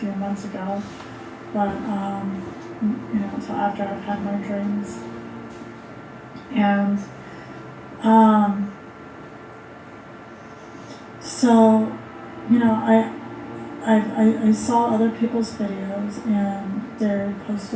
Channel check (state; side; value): identical; both; correlation 1.00